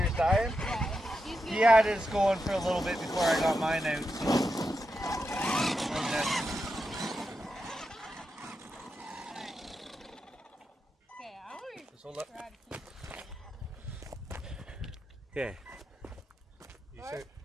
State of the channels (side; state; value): both; normal; correlation 0.87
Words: dying? Yeah. He had his going for a little bit before I got mine out, so. Okay, I want to Just hold up. try to keep it. Okay. You All start. right.